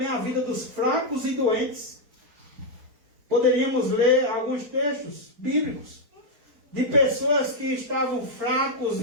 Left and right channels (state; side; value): late; left; 4.4 ms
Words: a vida dos fracos e doentes. Poderíamos ler alguns textos bíblicos de pessoas que estavam fracos,